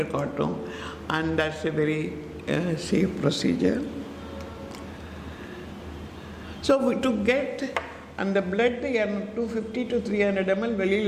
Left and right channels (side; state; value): both; identical; correlation 1.00